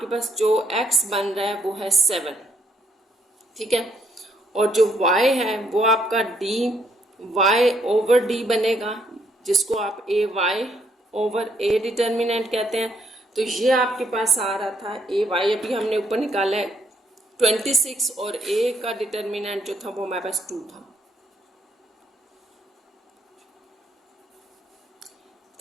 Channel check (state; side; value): normal; both; correlation 0.71